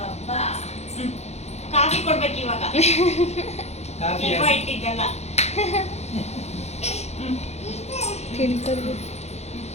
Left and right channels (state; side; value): late; right; 0.31 ms